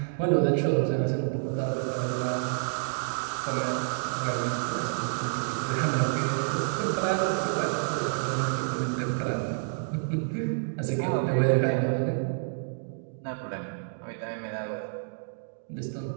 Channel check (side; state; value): left; silent; digital silence